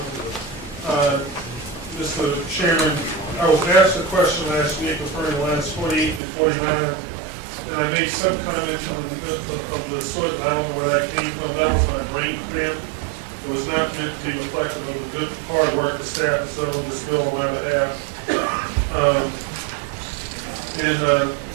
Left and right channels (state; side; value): drops out; left; at 6.2 s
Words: Mr. Chairman, I was asked a question last week referring to lines 48 and 49, and I made some comment of the sort that I don't know where that came from. That was my brain cramp. It was not meant to be reflective of the good hard work the staff has done on this bill on my behalf.